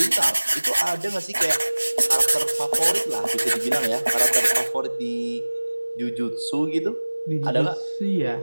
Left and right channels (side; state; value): both; inverted; correlation -1.00